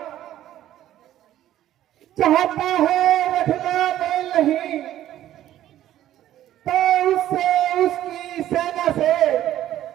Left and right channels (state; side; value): quieter; left; 12.7 dB